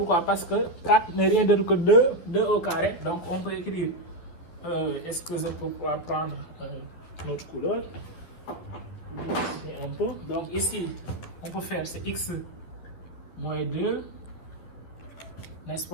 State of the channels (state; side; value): late; right; 11 ms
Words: Parce que 4 n'est rien d'autre que 2 au carré. Donc, on peut écrire, est-ce que je peux prendre notre couleur? Un peu. Donc, ici, on peut faire c'est x moins 2, n'est-ce